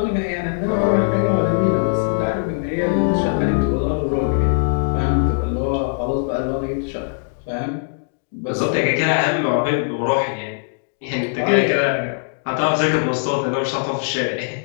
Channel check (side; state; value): right; silent; digital silence